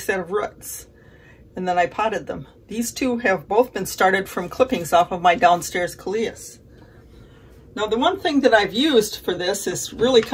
of roots, and then I potted them. These 2 have both been started from clippings off of my downstairs coleus. Now the one thing that I've used for this is really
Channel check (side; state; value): both; identical; correlation 1.00